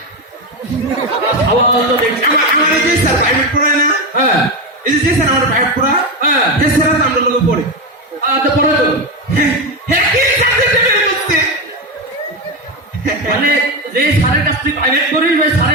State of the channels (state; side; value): normal; both; correlation 0.13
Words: সওয়াল তো দেখছি আমার এই যে স্যার প্রাইভেট পড়ায় না হ্যাঁ এই যে স্যার আমার প্রাইভেট পড়া হ্যাঁ এই স্যার আমরা লোক পড়ে তো পড়ে তো হ্যাঁ কি সাবজেক্টে ফেল করছে মানে যে স্যারের কাছ থেকে প্রাইভেট করিস ওই